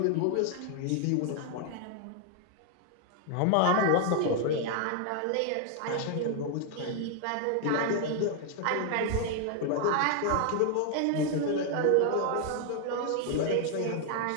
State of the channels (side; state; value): both; different; correlation 0.00